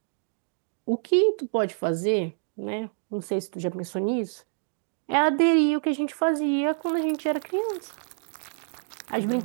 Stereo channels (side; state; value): left; silent; digital silence